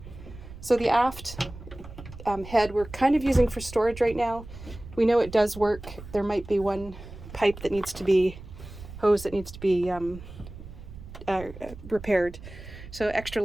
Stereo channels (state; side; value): noise; right; rumble, 14 dB below the sound